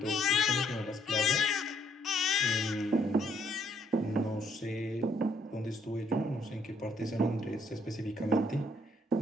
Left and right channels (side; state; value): both; normal; correlation 0.68